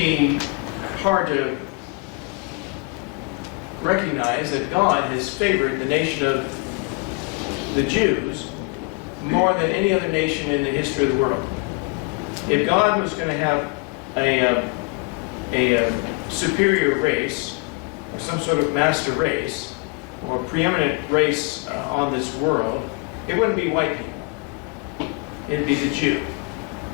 hard to recognize that God has favored the nation of the Jews more than any other nation in the history of the world. If God was going to have a superior race, or some sort of master race, or preeminent race on this world, it wouldn't be white people. It'd be the Jew.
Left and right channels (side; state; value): right; quieter; 29.2 dB